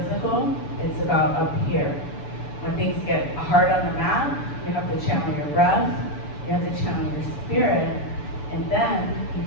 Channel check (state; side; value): late; right; 6.9 ms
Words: it's about up here. When things get hard on the mat, you have to channel your breath, you have to channel your spirit, and then you